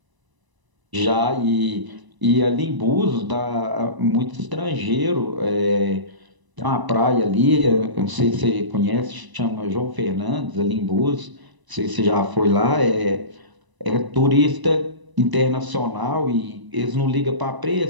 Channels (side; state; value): left; late; 1.0 ms